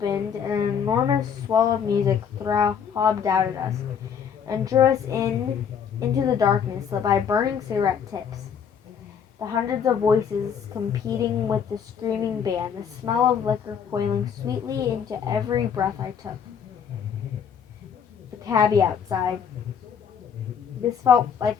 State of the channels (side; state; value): right; quieter; 7.5 dB